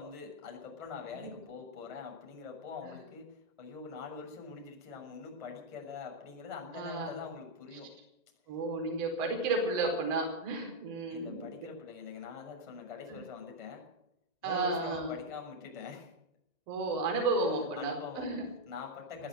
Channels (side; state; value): left; late; 1.9 ms